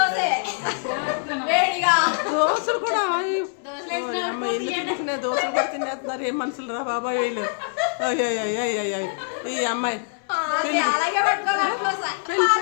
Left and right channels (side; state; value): right; silent; 63 dB below the other